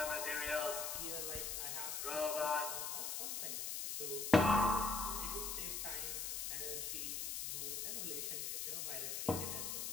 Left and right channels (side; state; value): left; noise; hiss, 2 dB below the sound